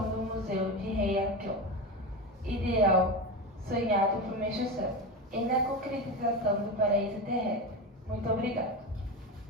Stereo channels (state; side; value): normal; both; correlation 0.20